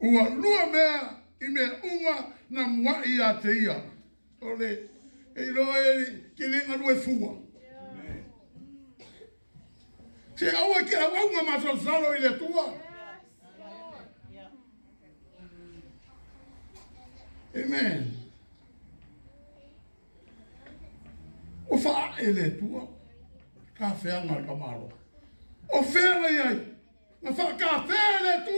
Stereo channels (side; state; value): both; inverted; correlation -1.00